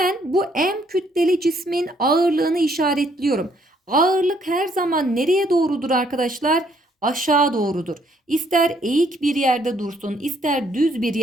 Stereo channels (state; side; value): normal; both; correlation 0.68